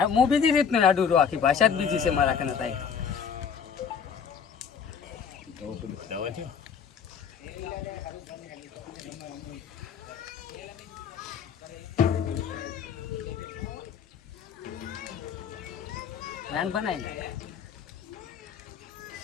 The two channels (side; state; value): right; quieter; 6.9 dB